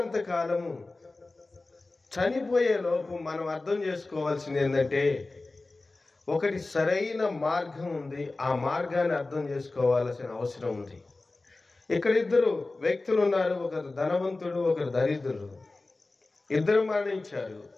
కాలము చనిపోయే లోపు మనం అర్థం చేసుకోవాల్సింది ఏంటంటే, ఒకటి సరైన మార్గం ఉంది, ఆ మార్గాన్ని అర్థం చేసుకోవాల్సిన అవసరం ఉంది. ఇక్కడ ఇద్దరు వ్యక్తులు ఉన్నారు, ఒకరు ధనవంతుడు, ఒకరు దరిద్రుడు. ఇద్దరు మరణించారు.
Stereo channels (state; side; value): quieter; right; 3.3 dB